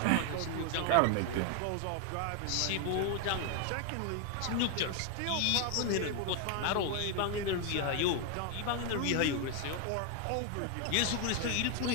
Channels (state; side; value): different; both; correlation 0.01